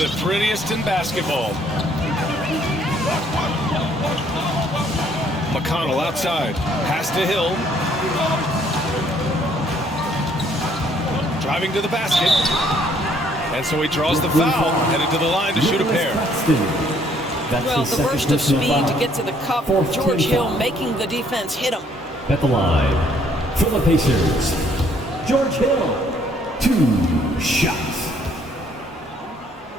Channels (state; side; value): normal; both; correlation 0.65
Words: prettiest in basketball. McConnell outside. Pass to Hill. Driving to the basket. And so he draws the foul. Headed to the line to shoot a pair. Well, the burst of speed to get to the cup. George Hill making the defense hit him. At the line for the Pacers, George Hill. 2 shots.